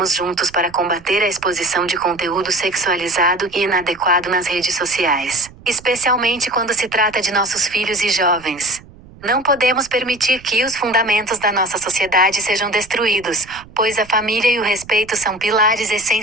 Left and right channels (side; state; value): right; noise; rumble, 22 dB below the sound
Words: juntos para combater a exposição de conteúdo sexualizado e inadequado nas redes sociais, especialmente quando se trata de nossos filhos e jovens. Não podemos permitir que os fundamentos da nossa sociedade sejam destruídos, pois a família e o respeito são pilares